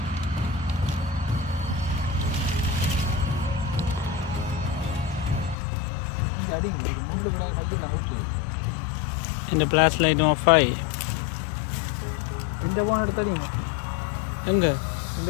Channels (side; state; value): right; drops out; at 5.6 s